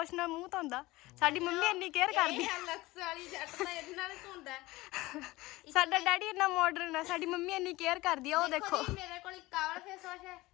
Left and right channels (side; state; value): right; quieter; 19.8 dB